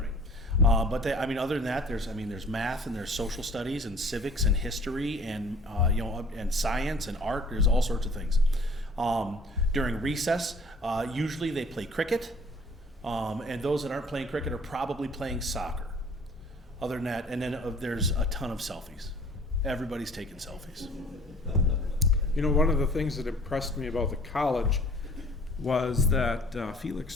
But they, I mean, other than that, there's math and there's social studies and civics and history and and science and art. There's all sorts of things. During recess, usually they play cricket, and those that aren't playing cricket are probably playing soccer. Other than that, and then there's a ton of selfies. Everybody's taking selfies. You know, one of the things that impressed me about the college was that Felix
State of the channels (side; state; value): both; normal; correlation 0.50